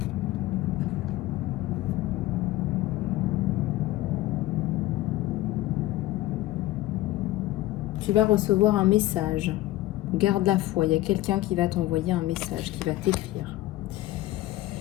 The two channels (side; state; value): right; quieter; 16.3 dB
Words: Tu vas recevoir un message. Garde la foi. Il y a quelqu'un qui va t'envoyer un message, qui va t'écrire.